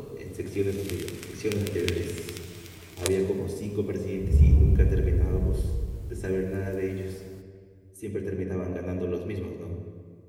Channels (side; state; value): both; identical; correlation 1.00